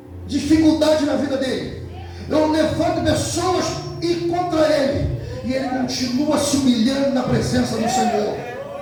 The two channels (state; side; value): identical; both; correlation 1.00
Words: dificuldade na vida dele, eu levanto pessoas e contra ele, e ele continua se humilhando na presença do Senhor.